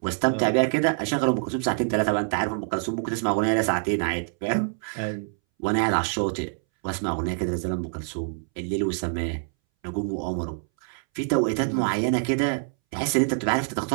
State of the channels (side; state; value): left; silent; 61 dB below the other